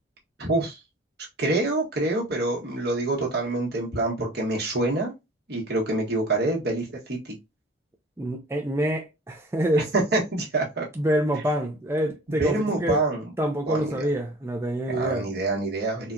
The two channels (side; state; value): both; normal; correlation 0.44